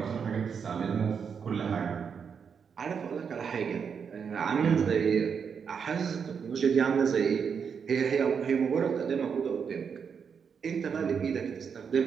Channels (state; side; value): quieter; left; 6.6 dB